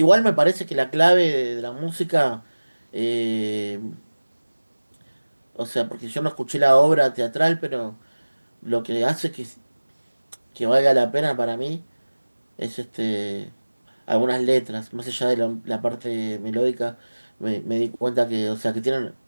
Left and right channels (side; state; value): both; inverted; correlation -1.00